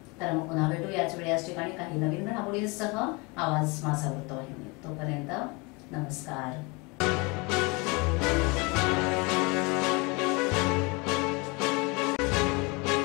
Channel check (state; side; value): quieter; right; 27.8 dB